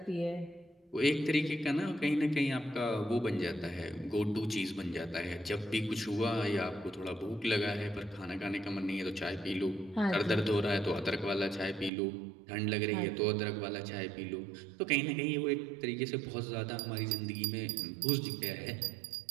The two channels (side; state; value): left; drops out; at 11.9 s